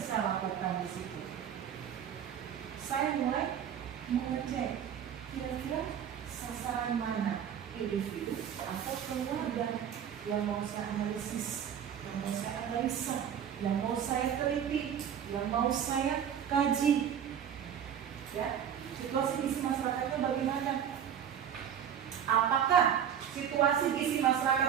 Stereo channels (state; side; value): quieter; left; 8.9 dB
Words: lakukan di situ? Saya mulai mengecek kira-kira sasaran mana individu atau keluarga yang mau saya analisis, yang mau saya analisa, yang mau saya teliti, yang mau saya kaji. Ya, situasi gizi masyarakatnya bagaimana? Apakah situasi gizi